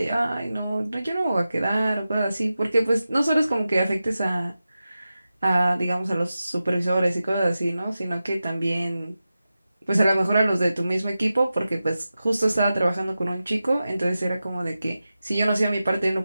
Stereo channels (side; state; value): both; inverted; correlation -0.93